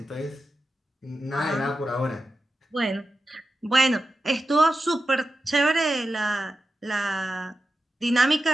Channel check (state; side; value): normal; both; correlation 0.91